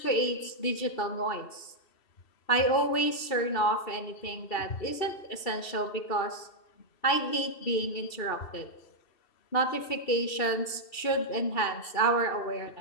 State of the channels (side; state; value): right; late; 2.7 ms